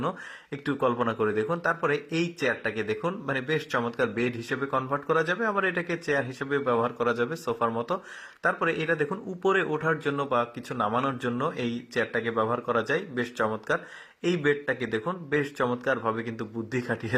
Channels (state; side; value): identical; both; correlation 1.00